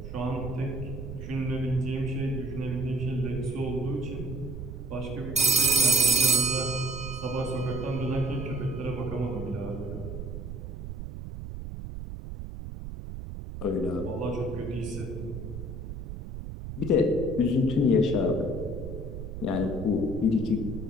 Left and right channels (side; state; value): right; noise; rumble, 8 dB below the sound